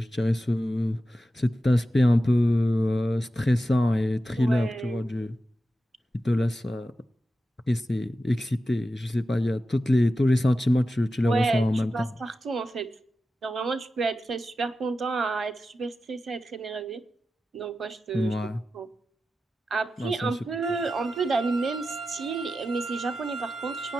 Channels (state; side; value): normal; both; correlation 0.92